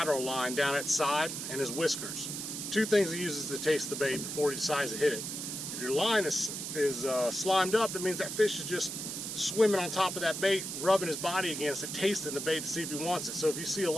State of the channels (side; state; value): right; noise; hiss, 5 dB below the sound